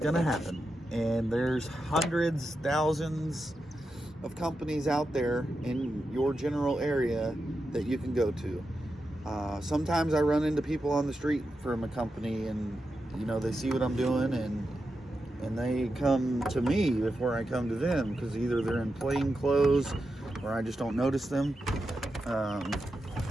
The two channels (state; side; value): normal; both; correlation 0.88